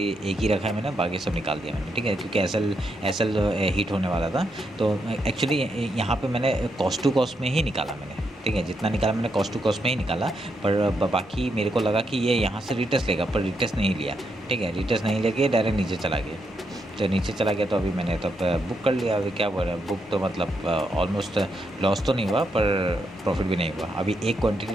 एक ही रखा है मैंने, बाकी सब निकाल दिया मैंने। ठीक है, क्योंकि SL हिट होने वाला था। तो एक्चुअली यहाँ पे मैंने कॉस्ट टू कॉस्ट में ही निकाला मैंने। ठीक है, जितना निकाला मैंने कॉस्ट टू कॉस्ट में ही निकाला, पर बाकी मेरे को लगा कि ये यहाँ से रिटेस्ट लेगा, पर रिटेस्ट नहीं लिया। ठीक है, रिटेस्ट नहीं लेके डायरेक्ट नीचे चला गया। तो नीचे चला गया तो अभी मैंने तब बुक कर लिया। अभी क्या बोल रहा है, बुक तो मतलब ऑलमोस्ट लॉस तो नहीं हुआ पर प्रॉफिट भी नहीं हुआ। अभी एक क्वांटिटी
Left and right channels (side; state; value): both; normal; correlation 0.81